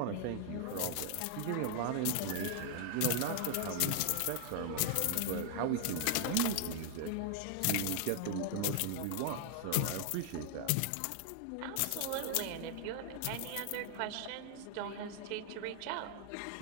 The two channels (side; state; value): both; different; correlation 0.00